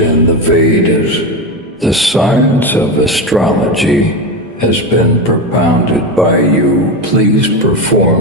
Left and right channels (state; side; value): normal; both; correlation 0.17